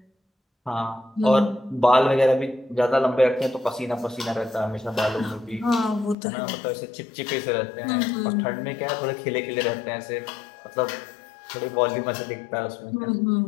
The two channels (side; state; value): right; drops out; at 6.2 s